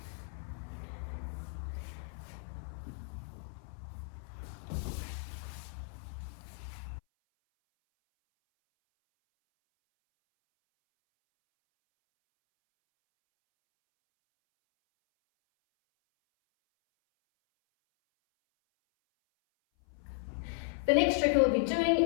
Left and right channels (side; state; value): right; silent; 54 dB below the other